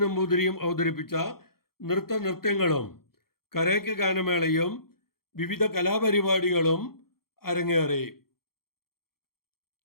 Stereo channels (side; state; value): right; late; 0.94 ms